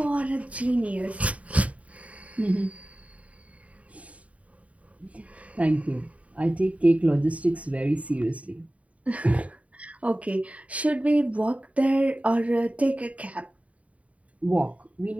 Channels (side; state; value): left; late; 0.067 ms